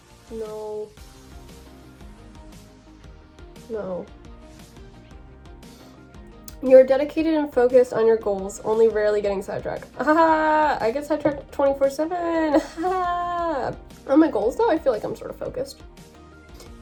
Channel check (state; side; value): identical; both; correlation 1.00